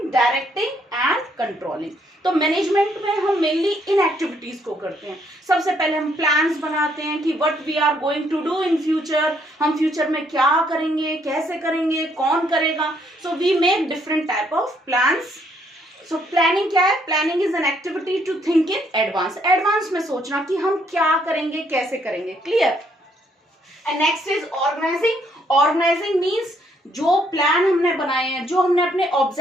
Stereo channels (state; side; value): normal; both; correlation 0.70